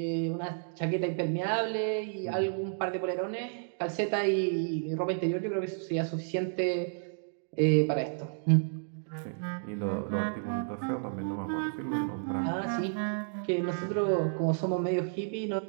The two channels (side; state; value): left; silent; digital silence